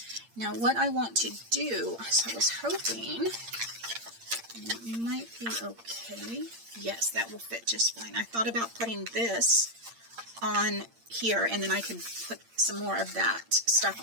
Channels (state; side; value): late; left; 8.7 ms